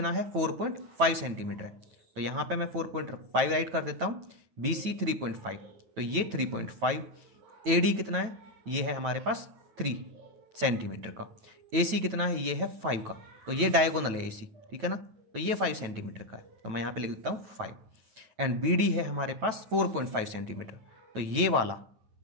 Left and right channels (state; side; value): late; left; 9.1 ms